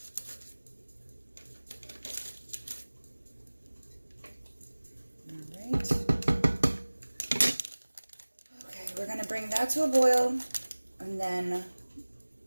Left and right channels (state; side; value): inverted; both; correlation -1.00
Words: Bring that to a boil and then